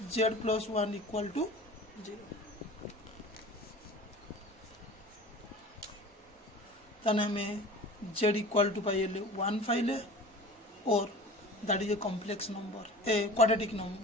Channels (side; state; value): both; normal; correlation 0.40